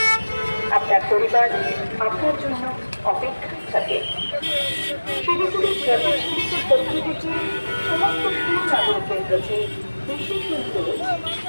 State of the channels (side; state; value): both; inverted; correlation -1.00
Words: আপনার পরিবার আপনার জন্য অপেক্ষায় থাকে। শিলিগুড়ির ট্রাফিক পুলিশের পক্ষ থেকে সমস্ত সুনাগরিকদের কাছে বিশেষ অনুরোধ,